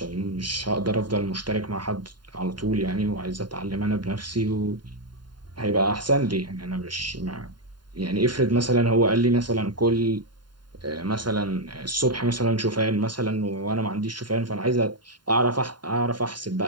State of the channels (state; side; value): late; left; 0.71 ms